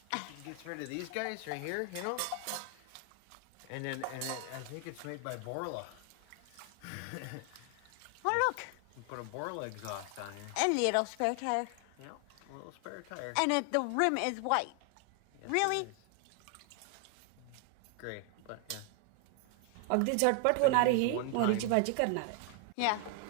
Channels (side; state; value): both; different; correlation 0.00